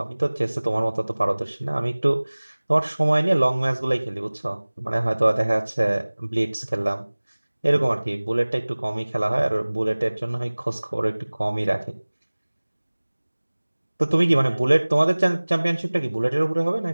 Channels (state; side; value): inverted; both; correlation -1.00